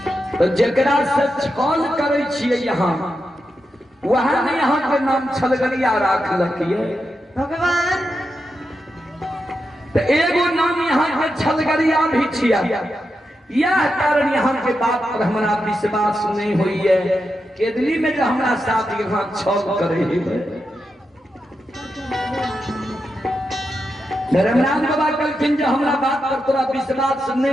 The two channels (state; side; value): normal; both; correlation 0.87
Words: तो जकरा से छल करे छिए यहाँ वहां ने यहाँ के नाम छलगरिया राख लखिए भगवान। तो एगो नाम यहाँ के छलगरिया भी छिया। यह कारण यहाँ के बात पर हमारा विश्वास नहीं हुई है। केदली में जो हमारा साथ यहाँ छल करे धर्मराज बाबा कहलखिन जो हमारा बात पर तोरा विश्वास